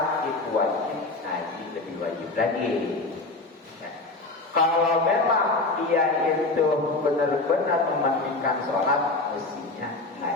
itu wajib, ngaji lebih wajib lagi. Ya. Kalau memang dia itu benar-benar mementingkan sholat, mestinya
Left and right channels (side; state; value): right; quieter; 3.2 dB